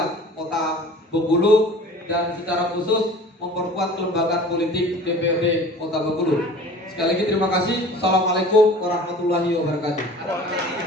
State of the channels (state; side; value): normal; both; correlation 0.44